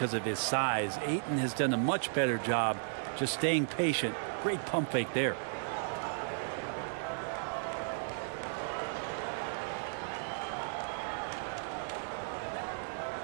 of his size, Ayton has done a much better job just staying patient. Great pump fake there.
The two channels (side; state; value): left; silent; 55 dB below the other